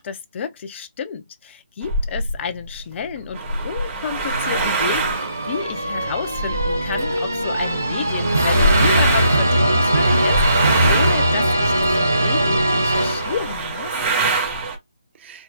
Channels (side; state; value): both; inverted; correlation -0.71